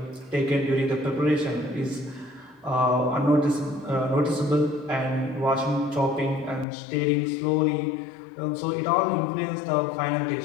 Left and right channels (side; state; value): right; drops out; at 6.7 s